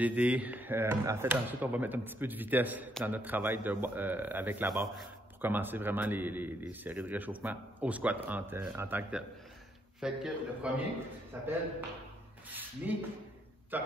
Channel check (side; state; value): both; normal; correlation 0.73